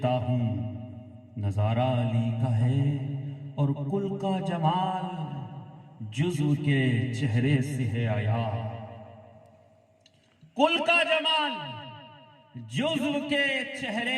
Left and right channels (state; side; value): identical; both; correlation 1.00